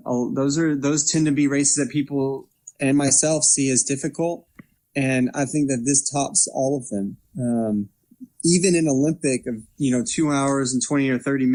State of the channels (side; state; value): both; identical; correlation 1.00